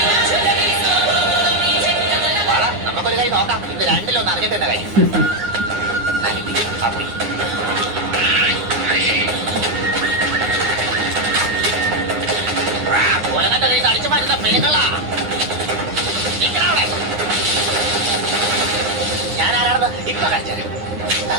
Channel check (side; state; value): left; late; 9.8 ms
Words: നമുക്കൊരു കൈ നോക്കാം. ഇത് രണ്ടിലൊന്ന് അറിഞ്ഞിട്ട് തന്നെ കൈ ആ പോയി. ഒലങ്ങന്റെ കൈ അടിച്ചു മാറ്റുന്ന പെണ്ണുങ്ങളാ. ഞാൻ ആരാണെന്ന് ഇപ്പൊ കാണിച്ചു.